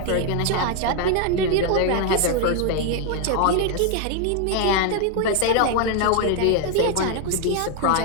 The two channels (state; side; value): different; both; correlation 0.01